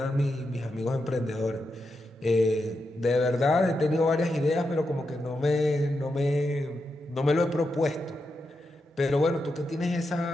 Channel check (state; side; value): normal; both; correlation 0.86